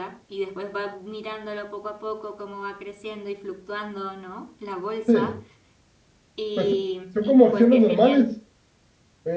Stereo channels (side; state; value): both; identical; correlation 1.00